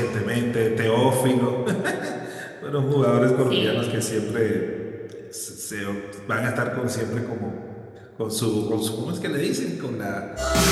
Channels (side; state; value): both; identical; correlation 1.00